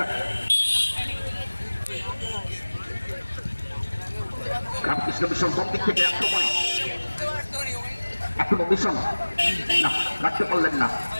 রামকৃষ্ণ মিশন কোন দিক থেকে আক্রমণ। এখনো মিশন না, রাখতে পারলেন না।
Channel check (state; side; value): inverted; both; correlation -1.00